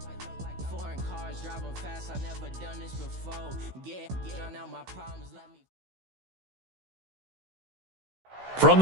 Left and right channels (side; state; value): left; late; 16 ms